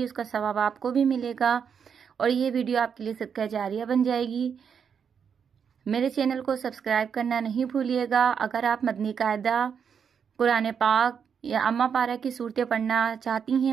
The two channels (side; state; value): left; quieter; 7.1 dB